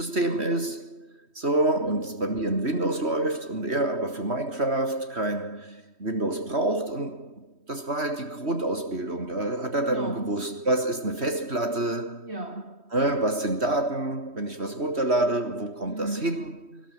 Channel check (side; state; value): left; late; 3.1 ms